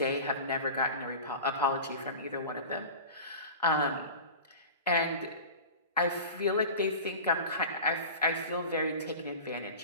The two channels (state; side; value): inverted; both; correlation -0.33